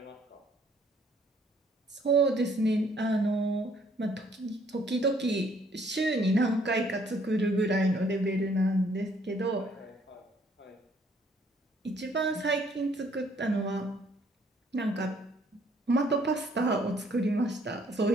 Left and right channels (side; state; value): both; normal; correlation 0.64